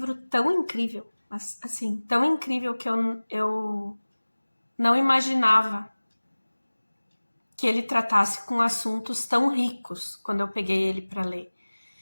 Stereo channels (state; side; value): inverted; both; correlation -1.00